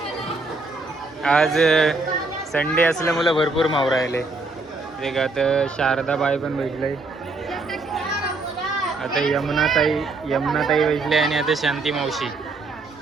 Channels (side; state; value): left; quieter; 3.5 dB